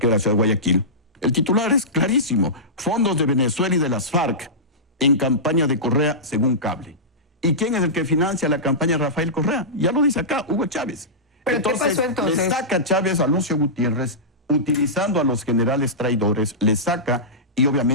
de la ciudad de Guayaquil. El titular es clarísimo: fondos de Venezuela y de las FARC en campaña de Correa según Cable. ¿Y quién es el que financia la campaña de Rafael Correa? Ya lo dice acá, Hugo Chávez. ¿Pero qué pasó entonces? Le saca Chávez a Lucio Gutiérrez, utilizando a los generales traidores, le saca, y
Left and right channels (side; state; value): both; normal; correlation -0.16